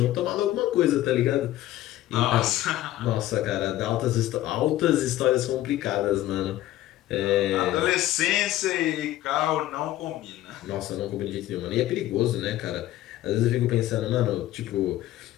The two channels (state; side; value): quieter; right; 14.6 dB